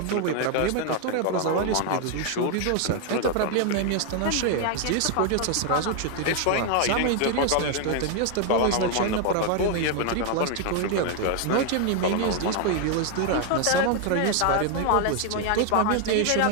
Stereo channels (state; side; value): different; both; correlation 0.00